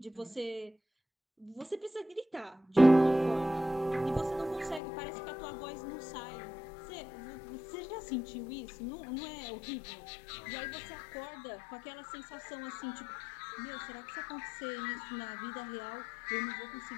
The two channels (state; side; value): drops out; right; at 4.8 s